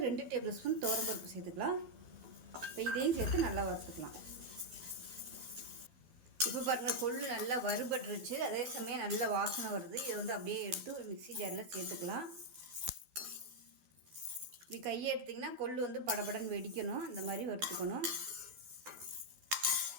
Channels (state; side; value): late; left; 12 ms